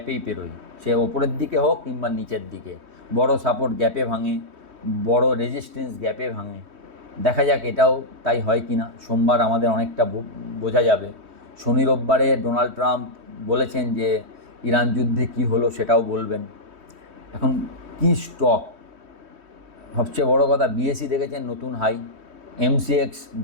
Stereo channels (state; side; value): late; left; 3.2 ms